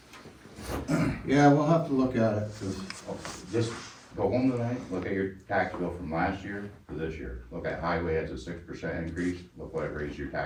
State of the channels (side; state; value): both; identical; correlation 1.00